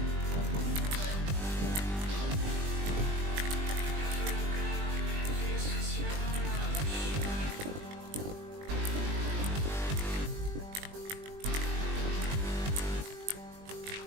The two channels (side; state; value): left; late; 20 ms